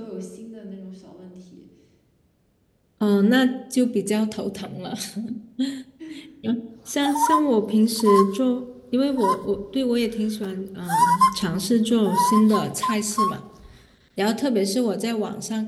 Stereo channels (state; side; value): identical; both; correlation 1.00